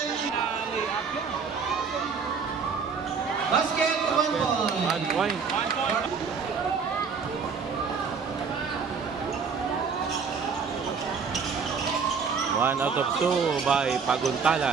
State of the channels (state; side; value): quieter; left; 5.7 dB